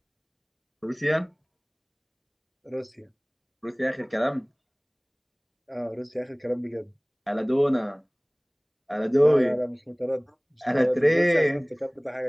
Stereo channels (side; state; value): both; identical; correlation 1.00